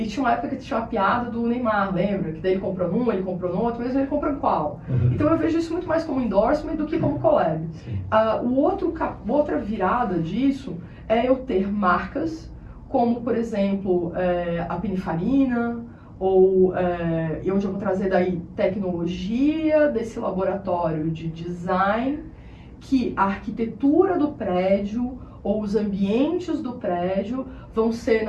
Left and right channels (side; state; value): both; identical; correlation 1.00